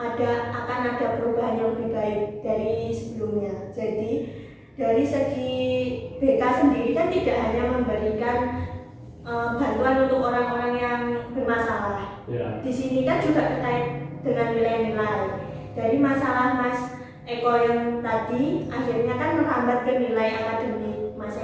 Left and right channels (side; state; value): both; identical; correlation 1.00